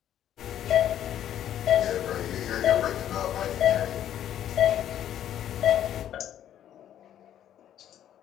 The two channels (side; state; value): right; quieter; 10.9 dB